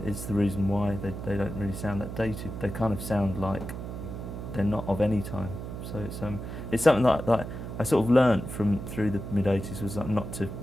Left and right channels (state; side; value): noise; right; hum, 8 dB below the sound